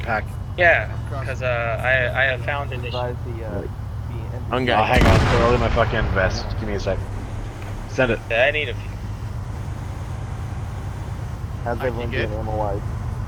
Yeah, because I have found an issue. Oh, hang on, they're all in my fucking vest. Give me a sec. Send it. I need a few. How's everyone doing ammo-wise?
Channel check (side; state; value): both; identical; correlation 1.00